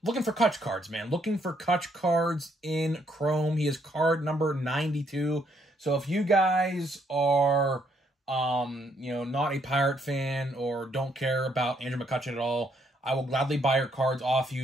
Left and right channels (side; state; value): both; normal; correlation 0.72